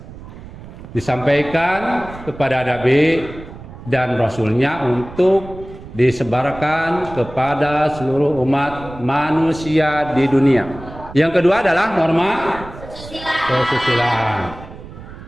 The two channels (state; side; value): noise; right; rumble, 15 dB below the sound